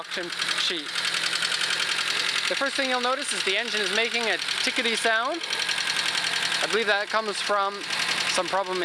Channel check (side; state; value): both; identical; correlation 1.00